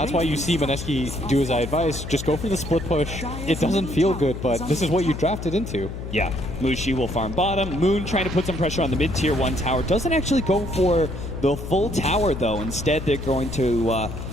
why you see Mineski do as I advise, just go for the split push. It doesn't feel good, but this is what you drafted into. Yeah, Mushi will farm bottom. Moon trying to put some pressure on the mid-tier 1 tower. Doesn't actually go for the full tower, though. Instead, they're going to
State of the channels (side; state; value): left; noise; hum, 8 dB below the sound